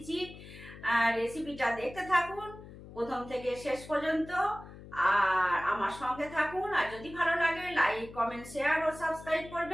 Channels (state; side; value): noise; left; hum, 16 dB below the sound